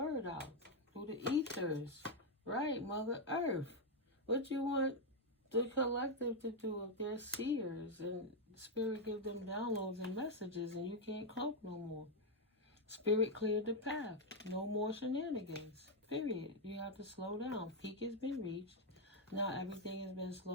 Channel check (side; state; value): both; normal; correlation 0.01